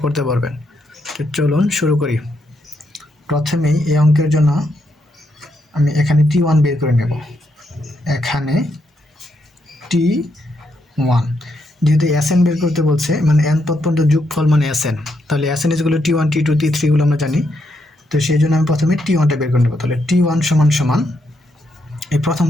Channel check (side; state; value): both; normal; correlation 0.79